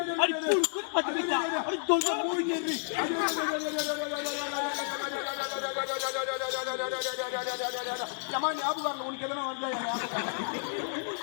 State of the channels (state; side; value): silent; right; 57 dB below the other